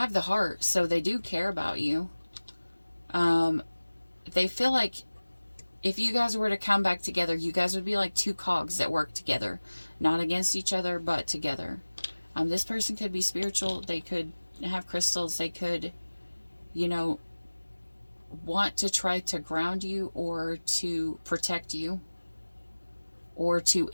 the heart, so they do care about you. They feel like if you guys were to come back together, you guys would be like two cogs that work together. Not against each other, but together. This person could be spiritual. They could have crystals. They could, you know, want to try to ground you or to protect you or to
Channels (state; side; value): inverted; both; correlation -1.00